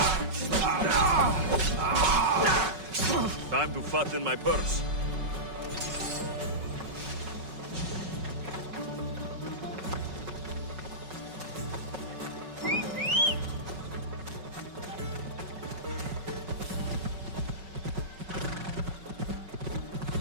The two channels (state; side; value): late; left; 5.4 ms